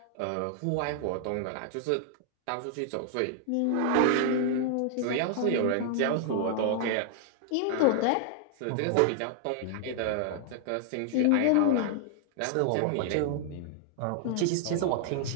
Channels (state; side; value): different; both; correlation 0.00